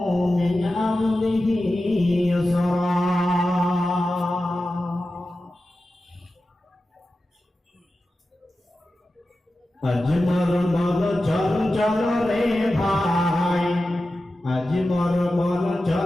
মিন আমরিহি ইউসরা। আজ মোর মন চঞ্চল রে ভাই, আজ মোর মন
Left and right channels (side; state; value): both; normal; correlation 0.93